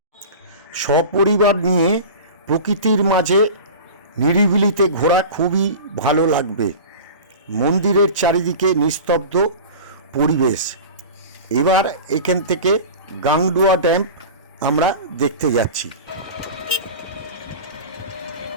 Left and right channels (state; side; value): inverted; both; correlation -0.33